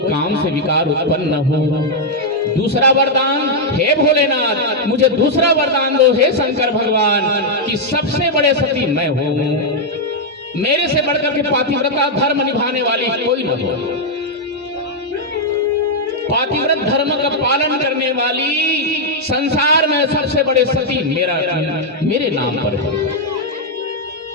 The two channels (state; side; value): normal; both; correlation -0.02